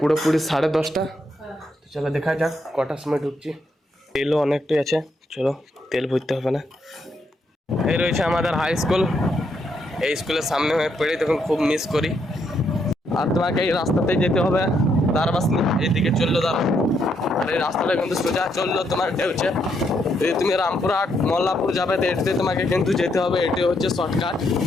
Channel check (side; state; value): both; normal; correlation 0.77